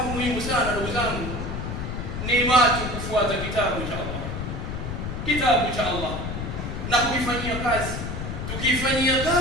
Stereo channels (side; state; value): left; noise; rumble, 5 dB below the sound